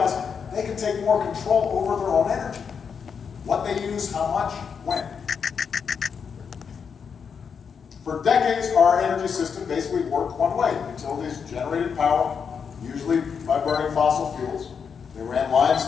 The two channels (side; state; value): right; quieter; 6.5 dB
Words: they can take more control over their own energy. What they use, how much, when. For decades, our energy system basically worked one way. Utilities generated power, usually by burning fossil fuels. They ran lines